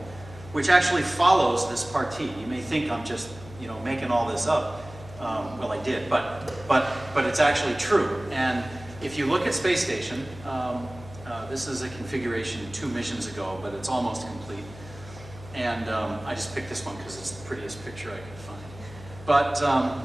which actually follows this partie. You may think I'm just, making all this up. Well, I did, but it's actually true. And if you look at Space Station, this is a configuration 2 missions ago, but it's almost complete. And I just picked this one because it's the prettiest picture I could find.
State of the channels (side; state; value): left; noise; hum, 17 dB below the sound